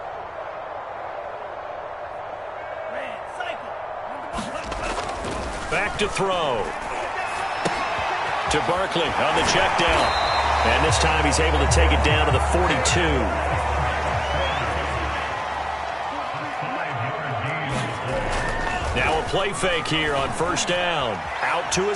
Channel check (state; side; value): identical; both; correlation 1.00